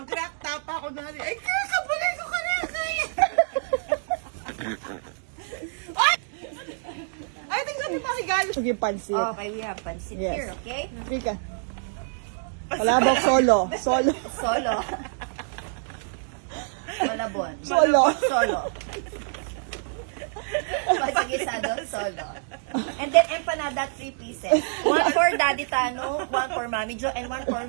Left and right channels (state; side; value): silent; left; digital silence